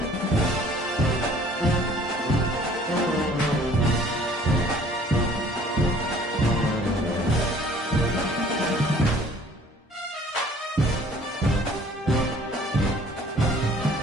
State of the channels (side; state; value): both; normal; correlation 0.54